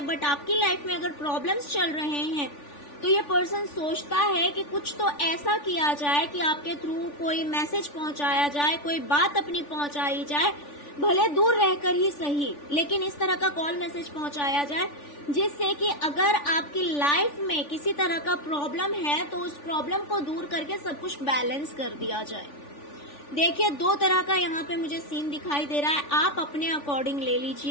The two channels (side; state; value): right; late; 3.4 ms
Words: बट आपकी लाइफ में अगर प्रॉब्लम्स चल रहे हैं तो ये पर्सन सोचता है कि कुछ तो ऐसा किया जाए कि आपके थ्रू कोई मैसेज पहुंचाया जाए, कोई बात अपनी पहुंचाई जाए, भले दूर रहकर ही सही, लेकिन इस तरह का कॉल मैसेज पहुंचाया जाए जिससे कि अगर आपकी लाइफ में किसी तरह का प्रॉब्लम है तो उस प्रॉब्लम को दूर करके सब कुछ बैलेंस कर दिया जाए। देखिए, दो तरह का यहाँ पे मुझे सीन दिखाई दे रहा है, आप अपने अकॉर्डिंग ले